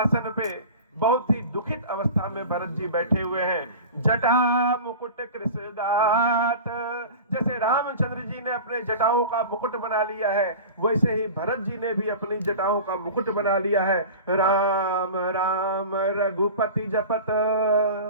पे बहुत ही दुखित अवस्था में भरत जी बैठे हुए हैं। जटा मुकुट कृषगात, जैसे रामचंद्र जी ने अपने जटाओं का मुकुट बना लिया है, वैसे ही भरत जी ने भी अपनी जटाओं का मुकुट बना लिया है। राम राम रघुपति जपत,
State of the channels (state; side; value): inverted; both; correlation -0.34